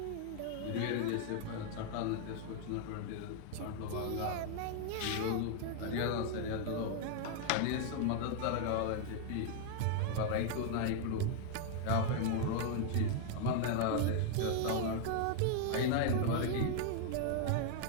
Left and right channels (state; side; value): different; both; correlation 0.00